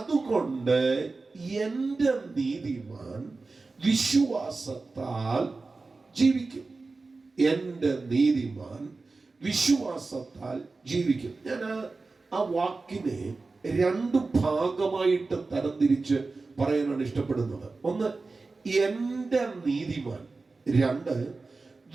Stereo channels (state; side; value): quieter; left; 3.8 dB